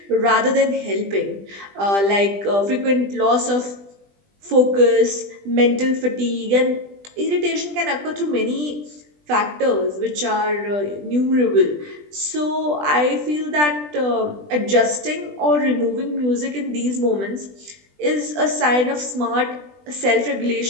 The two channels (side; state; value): left; late; 20 ms